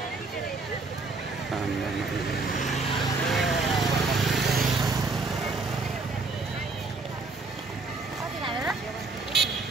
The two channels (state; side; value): quieter; left; 3.8 dB